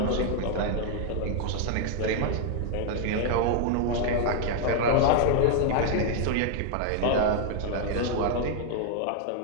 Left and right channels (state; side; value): different; both; correlation 0.00